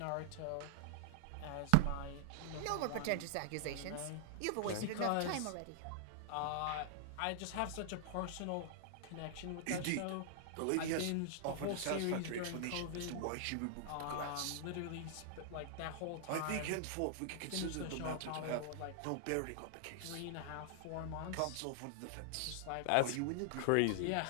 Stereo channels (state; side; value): different; both; correlation -0.01